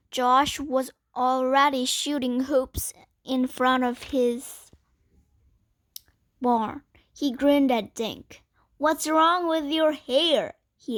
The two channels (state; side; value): identical; both; correlation 1.00